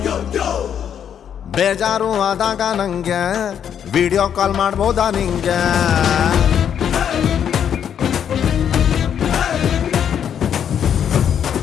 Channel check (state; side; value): quieter; right; 8.7 dB